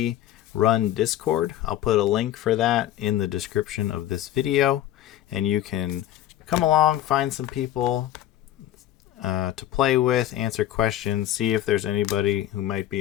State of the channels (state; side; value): quieter; right; 12.6 dB